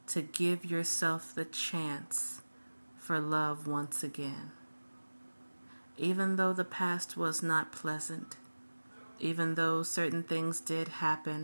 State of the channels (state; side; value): inverted; both; correlation -1.00